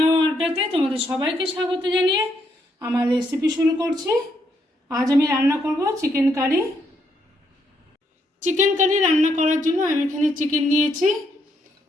ও আড্ডাতে তোমাদের সবাইকে স্বাগত জানিয়ে আমার রেসিপি শুরু করছি। আজ আমি রান্না করব চিকেন কারি। চিকেন কারি রান্না করার জন্য আমি এখানে চিকেন নিয়েছি।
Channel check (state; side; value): normal; both; correlation 0.75